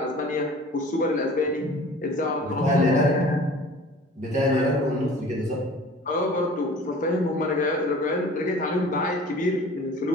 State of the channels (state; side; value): normal; both; correlation 0.45